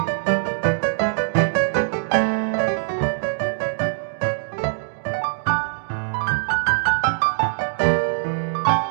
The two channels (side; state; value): left; silent; digital silence